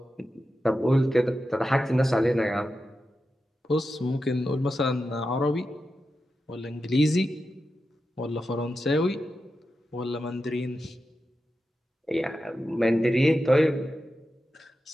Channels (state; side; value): normal; both; correlation 0.90